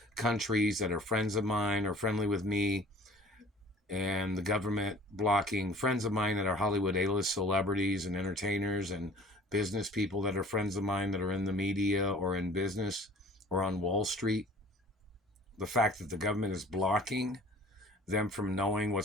countries that are friends of mine or friendly with me, and the government blocking friends of mine that are Hollywood A-list celebrities and entertainers and business people that are friends of mine that are in the media or in business or on Wall Street. The fact that the government is blocking them from knowing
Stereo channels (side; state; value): both; normal; correlation 0.49